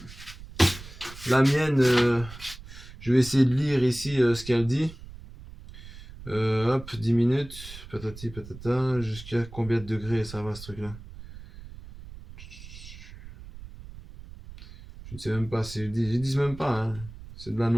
la mienne, je vais essayer de lire ici ce qu'elle dit. Hop, 10 minutes, patati patata, jusqu'à combien de degrés ça va ce truc-là? Je ne sais même pas, ils disent même pas, hein. C'est de la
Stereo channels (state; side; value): noise; right; rumble, 16 dB below the sound